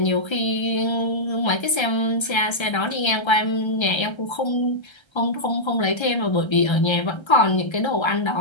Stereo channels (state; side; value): late; right; 1.3 ms